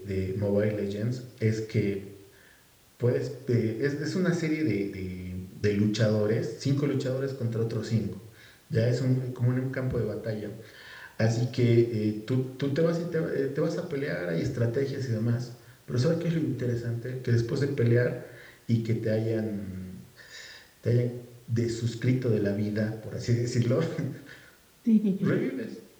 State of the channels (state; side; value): identical; both; correlation 1.00